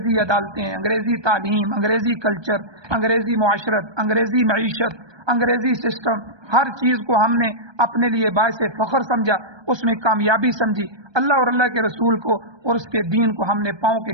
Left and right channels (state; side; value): late; left; 1.2 ms